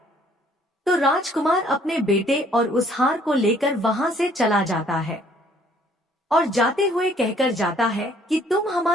तो राजकुमार अपने बेटे और उस हार को लेकर वहां से चला जाता है और जाते हुए कहकर जाता है कि तुम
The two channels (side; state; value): both; normal; correlation 0.61